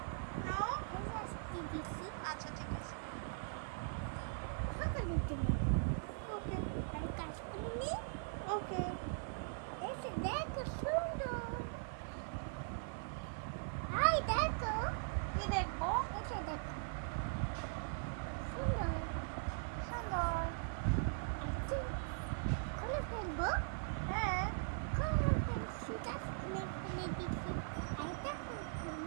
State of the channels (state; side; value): silent; left; 51 dB below the other